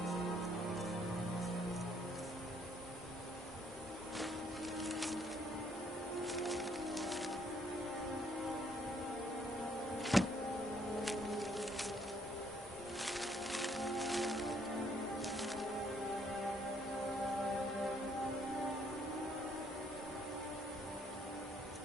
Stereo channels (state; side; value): normal; both; correlation 0.67